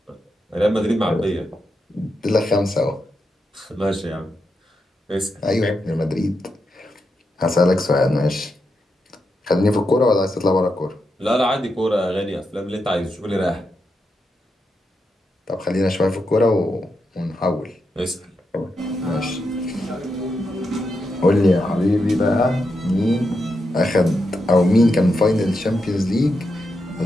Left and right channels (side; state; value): both; normal; correlation 0.85